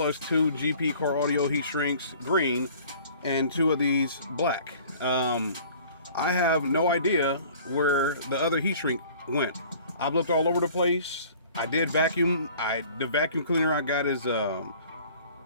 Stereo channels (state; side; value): inverted; both; correlation -0.49